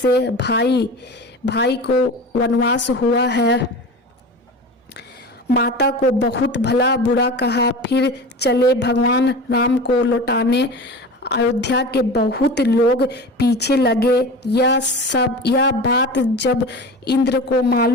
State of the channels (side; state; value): both; normal; correlation 0.32